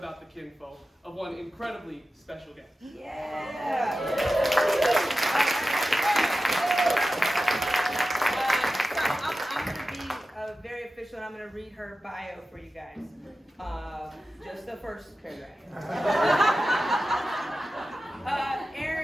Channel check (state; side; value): normal; both; correlation 0.93